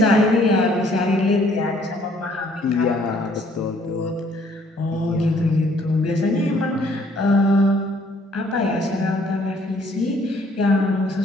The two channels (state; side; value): normal; both; correlation 0.62